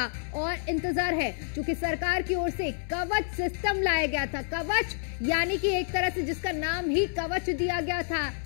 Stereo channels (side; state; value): right; silent; 57 dB below the other